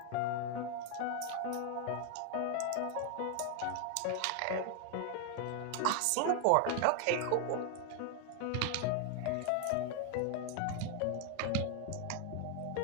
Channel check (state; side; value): different; both; correlation 0.00